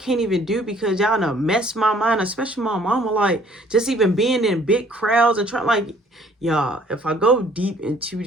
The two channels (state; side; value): normal; both; correlation 0.58